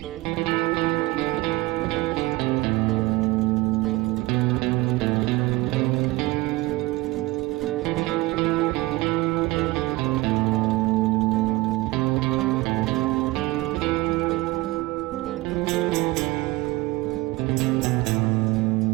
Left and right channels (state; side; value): quieter; left; 20.7 dB